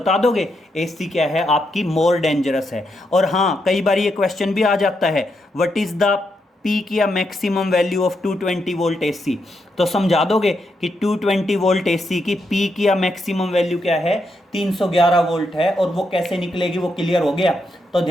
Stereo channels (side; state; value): both; normal; correlation 0.81